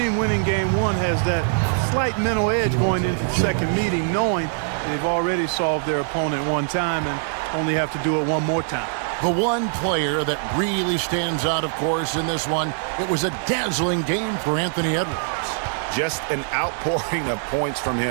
winning game 1 has that slight mental edge going into the second meeting, knowing they've already solved their opponent one time and only have to do it one more time. The one player that really stands out, of course, in this one, it was a dazzling game for Anthony Edwards. Just an outpouring of points from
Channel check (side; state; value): left; silent; 64 dB below the other